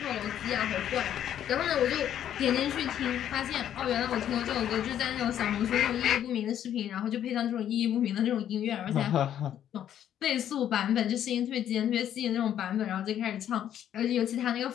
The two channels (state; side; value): quieter; right; 10.5 dB